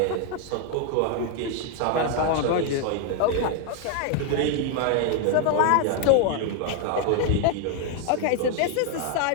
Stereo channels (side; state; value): both; different; correlation 0.00